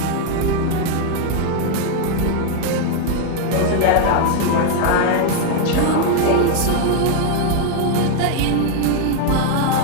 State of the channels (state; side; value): different; both; correlation 0.00